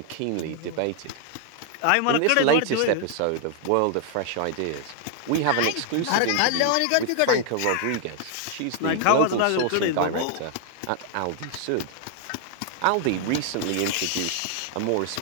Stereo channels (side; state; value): both; different; correlation 0.00